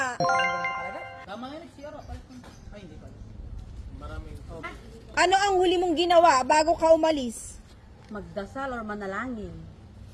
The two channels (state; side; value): identical; both; correlation 1.00